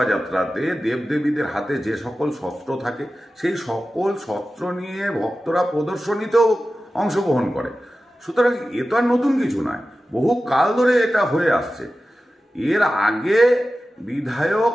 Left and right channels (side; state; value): both; normal; correlation 0.94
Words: দেবদেবীদের হাতে যে সকল শস্ত্র থাকে সেই সকল শস্ত্র নিয়ে ভক্তরা প্রদর্শনীতেও অংশগ্রহণ করে। সুতরাং এ তো আর নতুন কিছু নয়, বহু কাল ধরে এটা হয়ে আসছে। এর আগে বিধায়ক